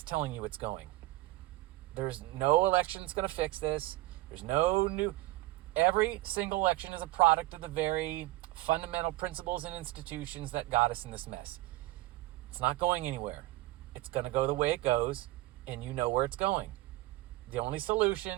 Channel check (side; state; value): left; quieter; 18.2 dB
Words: telling you it's going. There's no election that's going to fix this. There's no new... Every single election is a product of the very fundamental principles and institutions that got us in this mess. It's not going anywhere. It's going to go the way it goes, and you know where it's going. The